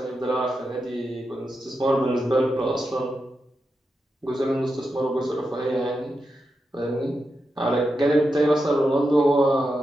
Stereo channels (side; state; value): both; normal; correlation 0.88